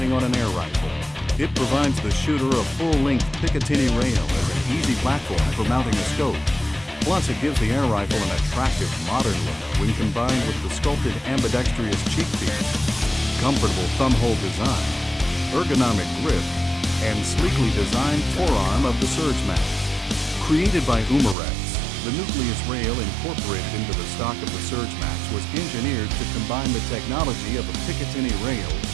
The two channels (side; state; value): left; drops out; at 21.4 s